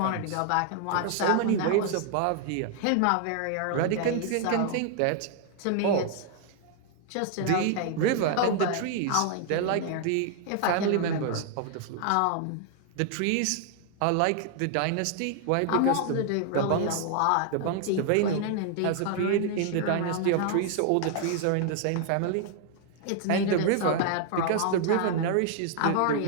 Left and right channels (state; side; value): different; both; correlation 0.00